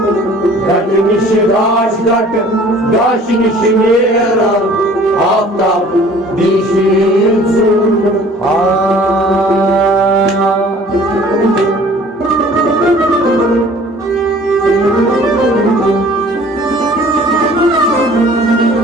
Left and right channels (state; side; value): normal; both; correlation 0.51